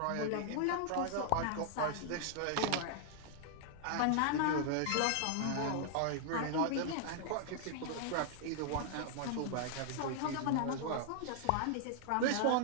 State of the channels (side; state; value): both; different; correlation 0.00